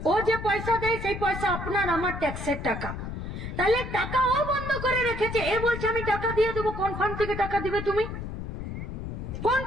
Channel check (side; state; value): left; noise; rumble, 7 dB below the sound